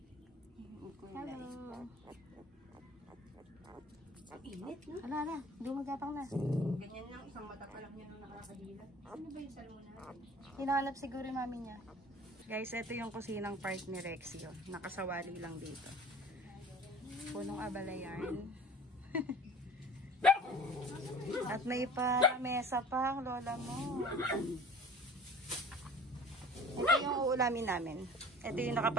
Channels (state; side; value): normal; both; correlation 0.45